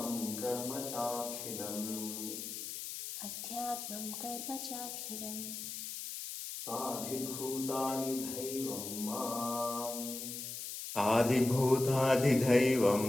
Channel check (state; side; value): noise; left; hiss, 7 dB below the sound